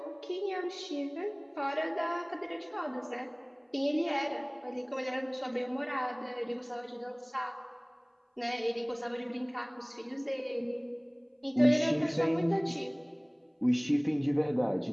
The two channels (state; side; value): identical; both; correlation 1.00